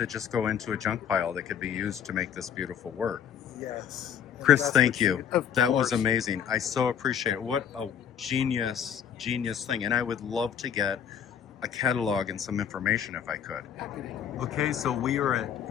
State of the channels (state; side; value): quieter; right; 8.6 dB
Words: just go into a junk pile that could be used to make this beautiful work. Yes. And Chris, that's thank what you. Of That was course. amazing. I so appreciate it. What a genius thing. And I would love to get a catalog and some information if I could. Okay, so we are